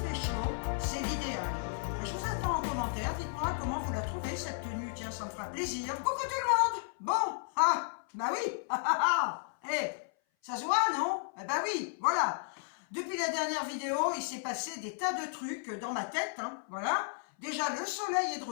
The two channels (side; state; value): right; silent; 55 dB below the other